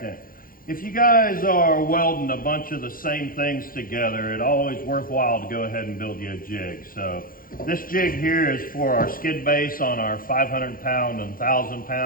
If you guys are welding a bunch of the same things together, it's always worthwhile to go ahead and build you a jig. So this jig here is for our skid base on our 500 pound and 1,000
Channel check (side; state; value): right; late; 0.41 ms